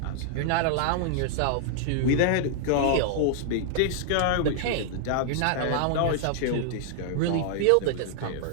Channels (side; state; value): both; different; correlation -0.01